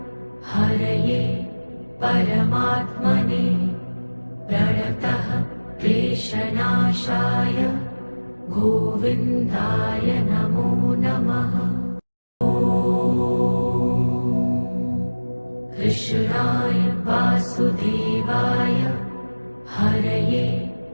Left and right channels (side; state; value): both; inverted; correlation -1.00